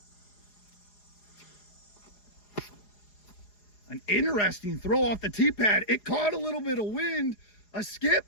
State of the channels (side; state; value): right; late; 4.8 ms